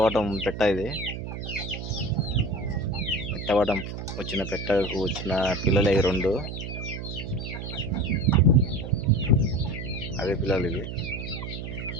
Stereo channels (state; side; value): noise; right; hum, 7 dB below the sound